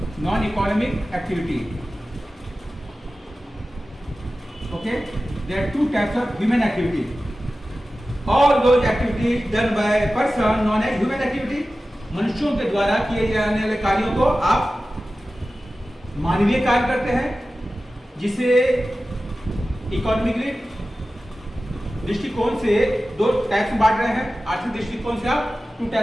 non economic activity. Okay, there are two types of human activity. All those activities done by person known as human activity. मनुष्यों के द्वारा किए जाने वाले कार्यों को आप मानवीय कार्य करते हैं, जिसे इकोनॉमिकली दृष्टिकोण से दो टाइप्स में बांट रहे हैं। आर्थिक दृष्टिकोण से आप टू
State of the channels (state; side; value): normal; both; correlation 0.95